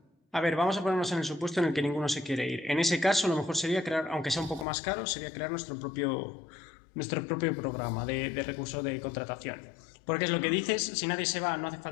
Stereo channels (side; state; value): right; drops out; at 4.7 s